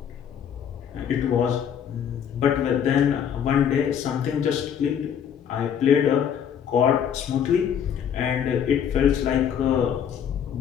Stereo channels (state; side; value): quieter; right; 8.5 dB